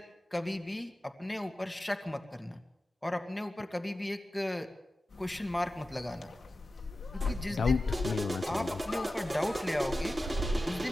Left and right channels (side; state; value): both; normal; correlation 0.94